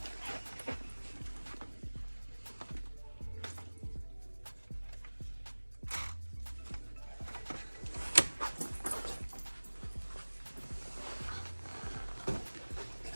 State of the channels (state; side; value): inverted; both; correlation -1.00